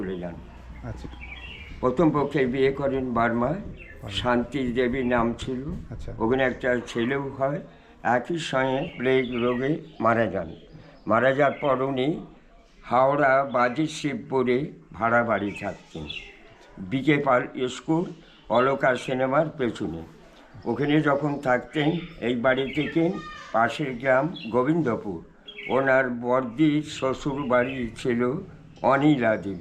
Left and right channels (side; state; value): both; identical; correlation 1.00